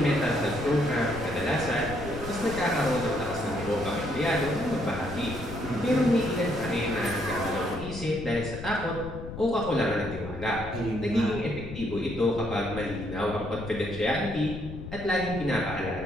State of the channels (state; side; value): noise; left; rumble, 10 dB below the sound